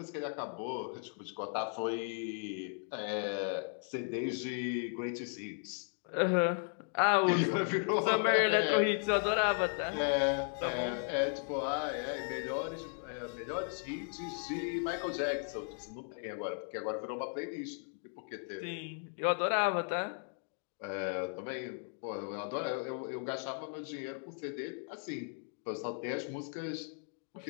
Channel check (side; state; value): right; silent; 54 dB below the other